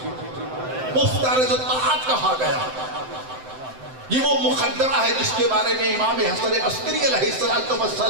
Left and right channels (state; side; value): late; left; 7.8 ms